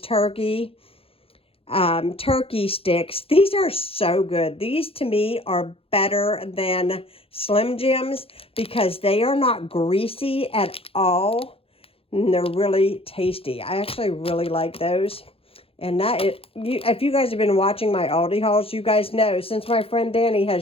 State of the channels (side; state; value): right; late; 0.27 ms